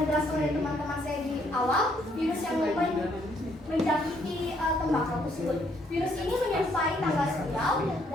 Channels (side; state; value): both; normal; correlation 0.69